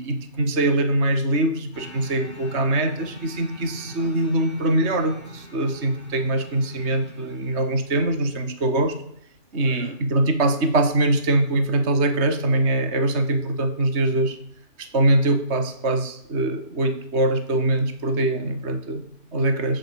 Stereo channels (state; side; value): late; left; 3.2 ms